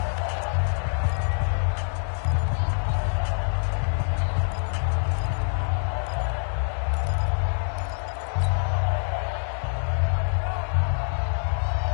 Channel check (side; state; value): right; silent; digital silence